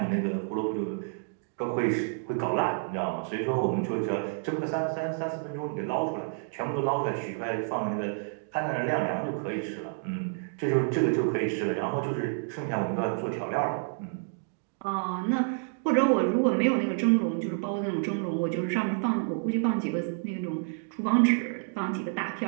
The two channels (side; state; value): left; silent; digital silence